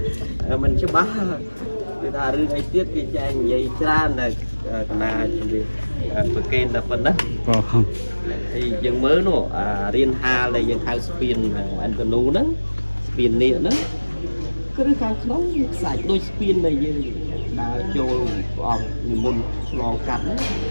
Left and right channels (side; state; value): both; inverted; correlation -1.00